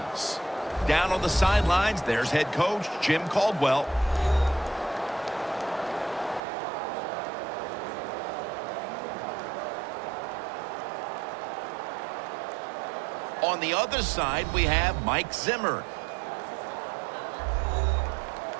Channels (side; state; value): left; drops out; at 6.4 s